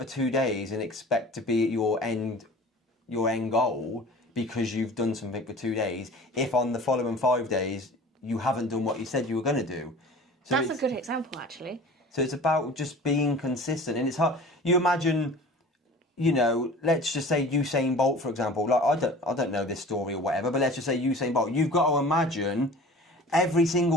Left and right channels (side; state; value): both; normal; correlation 0.42